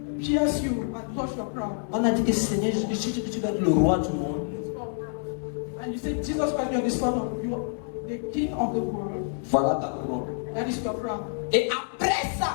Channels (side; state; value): right; silent; digital silence